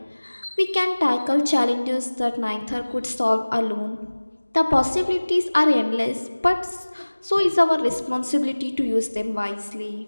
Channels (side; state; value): both; inverted; correlation -1.00